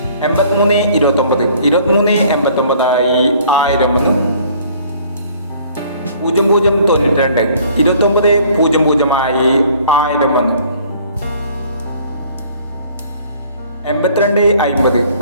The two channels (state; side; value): inverted; both; correlation -0.56